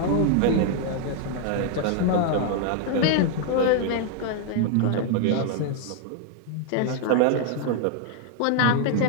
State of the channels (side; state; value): both; different; correlation 0.00